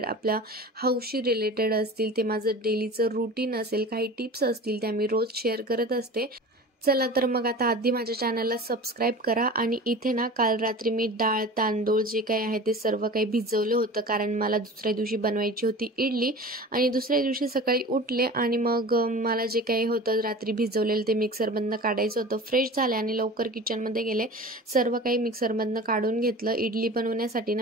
आपल्या हाऊसशी रिलेटेड असतील, ते माझं डेलीचं रूटीन असेल, काही टिप्स असतील त्या मी रोज शेअर करत असते। चला तर मग आता आधी माझ्या चॅनलला सबस्क्राइब करा। आणि इथे ना काल रात्री मी डाळ तांदूळ जे काही आहे ते सर्व काही भिजवलं होतं, कारण मला दुसऱ्या दिवशी बनवायची होती इडली। आणि दुसऱ्या दिवशी सकाळी उठले आणि मग मला जे काही होतं रात्री भिजवलेलं ते मिक्सरमधनं काढायचं होतं। फ्रेश झाले आणि लवकर किचनमध्ये गेले, सर्व काही मिक्सरमधनं काढून घेतलं। इडली बनवण्यासाठी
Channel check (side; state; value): both; normal; correlation 0.37